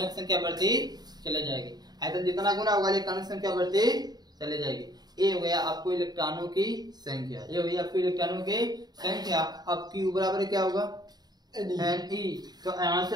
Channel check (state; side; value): late; left; 0.20 ms